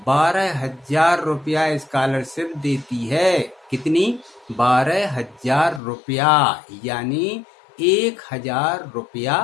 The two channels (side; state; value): right; drops out; at 5.8 s